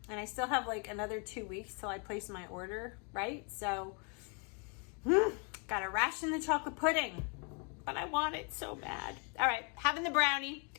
I still have like another 2 weeks till I place my order, right? So, gotta ration the chocolate pudding. But I want it so bad. All right, having the brownie.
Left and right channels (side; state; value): right; quieter; 36.6 dB